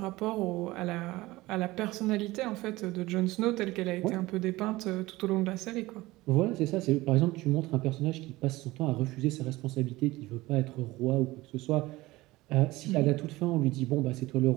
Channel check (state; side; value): quieter; left; 19.3 dB